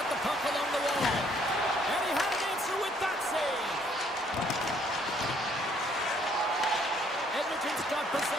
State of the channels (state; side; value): normal; both; correlation 0.65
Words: the puck along the wall. And he had an answer with that save. Edmonton's got